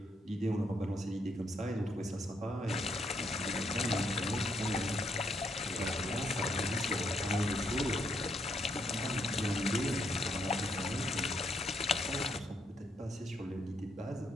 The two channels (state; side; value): normal; both; correlation 0.74